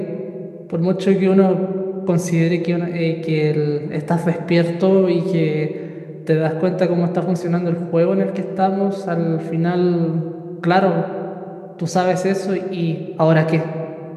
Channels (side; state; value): both; identical; correlation 1.00